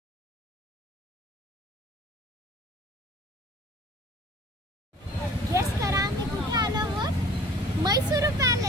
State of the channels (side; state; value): both; normal; correlation 0.49